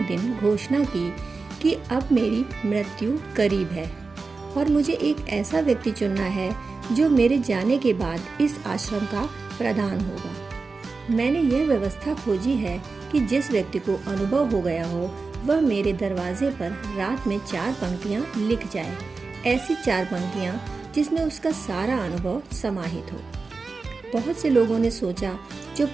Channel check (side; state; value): left; quieter; 4.1 dB